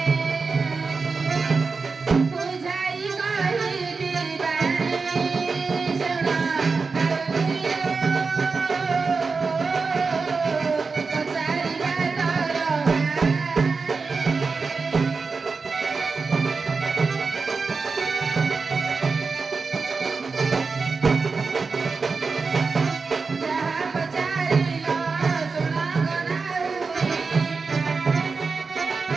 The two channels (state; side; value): quieter; left; 4.5 dB